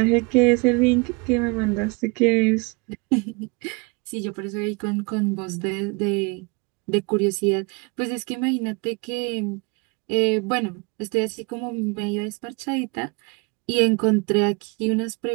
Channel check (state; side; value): quieter; left; 30.2 dB